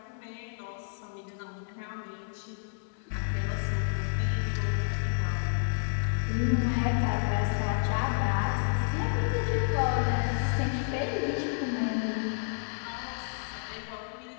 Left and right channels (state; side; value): silent; right; 58 dB below the other